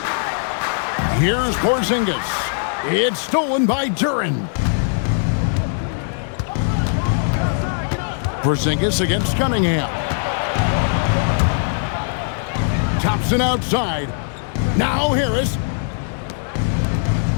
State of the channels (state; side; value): silent; right; 62 dB below the other